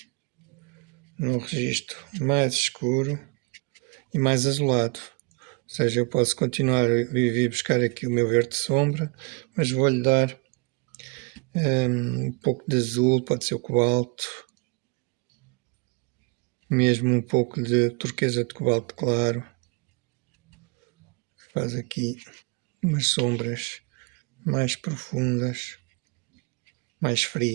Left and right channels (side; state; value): left; quieter; 30.5 dB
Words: num registro mais escuro e mais azulado. Ou seja, eu posso continuar a vir buscar aqui o meu verde sombra, mas vou-lhe dar um pouco de azul, pode ser o cobalto, mesmo um pouco de turquesa de cobalto claro. Faz aqui umas sombras mais profundas, mais